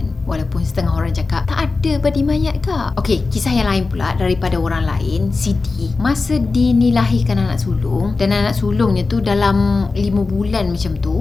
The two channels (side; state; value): right; quieter; 3.9 dB